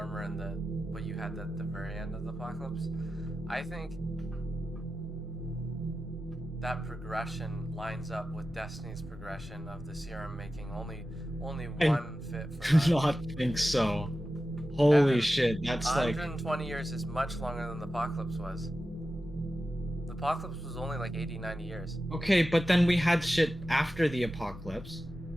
and the what you had at the very end of the Apocalypse. I think that progression lines up with Destiny's progression of the serum making only one fit for Do that. not think so. Holy Evan, shit, that's like 120 years is much longer than the Apocalypse was. The Apocalypse was only like 80, 90 years. okay, but then we had shit after the apocalypse,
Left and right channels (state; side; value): normal; both; correlation 0.93